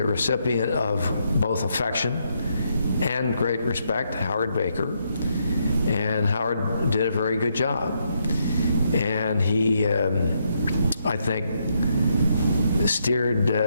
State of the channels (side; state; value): both; inverted; correlation -0.77